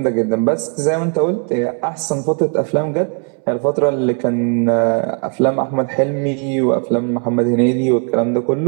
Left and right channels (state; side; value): quieter; left; 39.4 dB